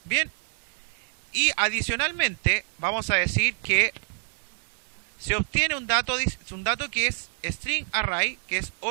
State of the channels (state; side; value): silent; left; digital silence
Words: Bien. Y adicionalmente vamos a decir que se obtiene un dato que es string array, que es